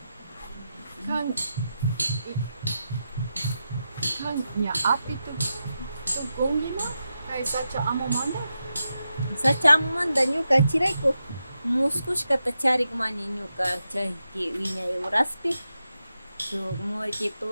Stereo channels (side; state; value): both; inverted; correlation -0.88